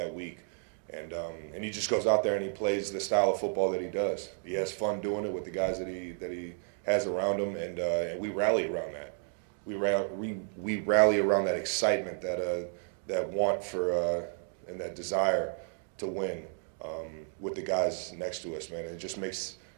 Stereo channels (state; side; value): silent; left; 56 dB below the other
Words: week. And he just goes out there and he plays the style of football that he does. He has fun doing it with the guys that he has around him, and we rally around that. We rally around that excitement, that want for and that desire to win with the guys next to us, man. It just makes